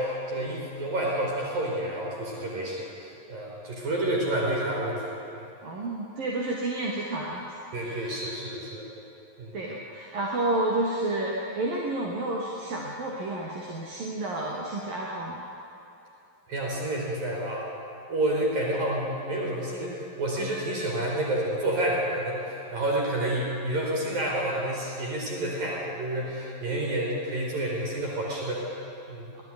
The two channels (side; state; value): left; late; 11 ms